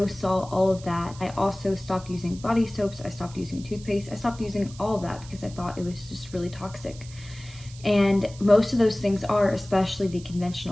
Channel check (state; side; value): noise; right; hiss, 19 dB below the sound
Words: salt, all of that. I also stopped using body soaps, I stopped using toothpaste, I stopped using all of that because I thought it was just really toxic. And most of those things are, especially the